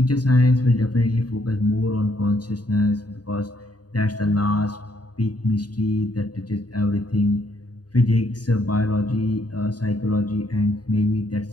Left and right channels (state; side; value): late; right; 0.69 ms